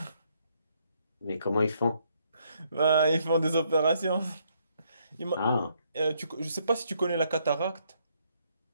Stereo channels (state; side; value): inverted; both; correlation -0.72